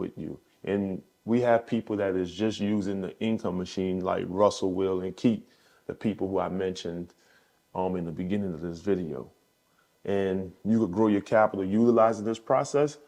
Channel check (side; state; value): both; identical; correlation 1.00